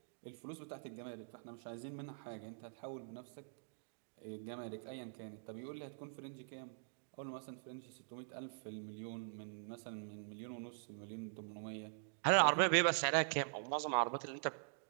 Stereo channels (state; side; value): silent; left; digital silence